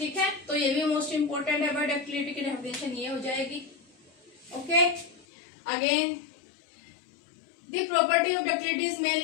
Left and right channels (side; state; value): right; drops out; at 5.2 s